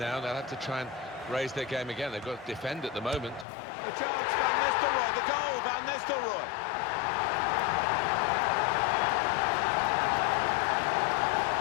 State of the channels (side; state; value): right; drops out; at 3.5 s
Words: They'll have to try and raise their game again. They've got to defend at the moment. The chance, Van Nistelrooy, the goal, Van Nistelrooy.